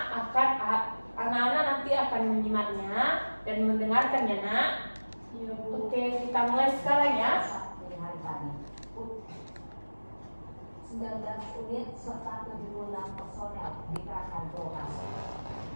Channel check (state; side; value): inverted; both; correlation -1.00